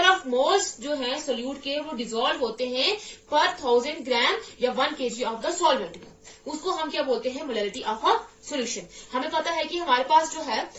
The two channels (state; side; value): identical; both; correlation 1.00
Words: ऑफ मोल्स जो है सोल्यूट के वो डिसॉल्व होते हैं पर 1000 ग्राम या 1 kg ऑफ द सॉल्वेंट में, उसको हम क्या बोलते हैं? Molarity of a solution. हमें पता है कि हमारे पास जो है